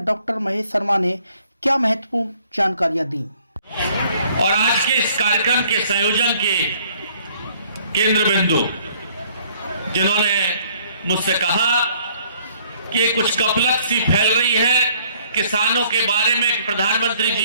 डॉक्टर महेश शर्मा ने क्या महत्वपूर्ण जानकारियां दी। और आज के इस कार्यक्रम के संयोजन के केंद्र बिंदु जिन्होंने मुझसे कहा कि कुछ कपलत सी फैल रही है किसानों के बारे में, प्रधानमंत्री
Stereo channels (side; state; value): both; inverted; correlation -0.61